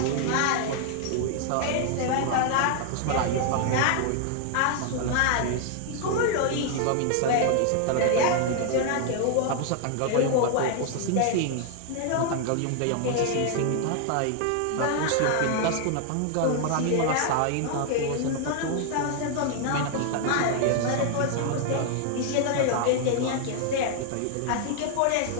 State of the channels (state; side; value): different; both; correlation 0.00